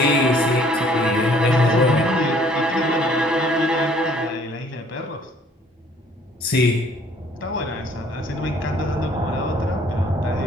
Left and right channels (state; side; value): normal; both; correlation 0.59